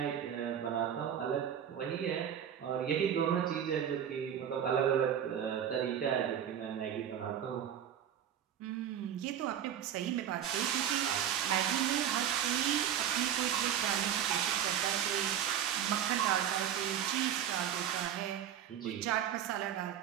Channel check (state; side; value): quieter; left; 9.5 dB